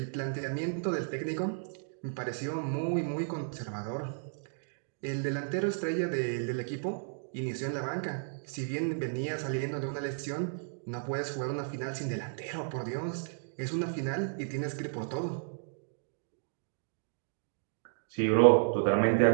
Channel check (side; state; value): left; silent; digital silence